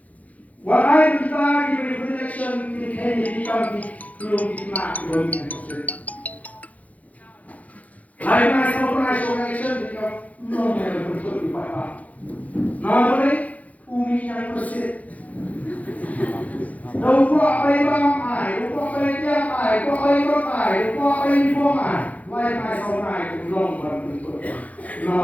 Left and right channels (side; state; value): right; late; 0.072 ms